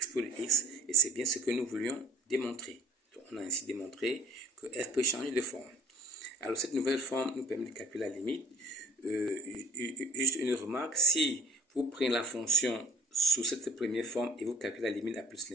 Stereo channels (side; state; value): both; normal; correlation 0.51